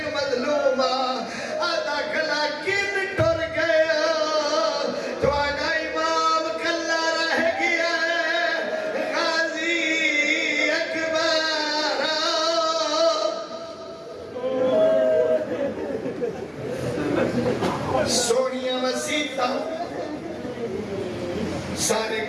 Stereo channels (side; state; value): both; identical; correlation 1.00